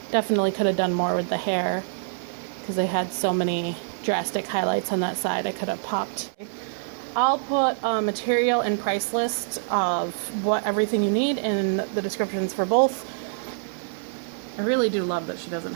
Definitely could have done more with the hair because I had so many drastic highlights on that side. I could have popped. I'll put a material and price list of what everything you need in the descriptions for both. I really do love that she doesn't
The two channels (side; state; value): left; silent; 61 dB below the other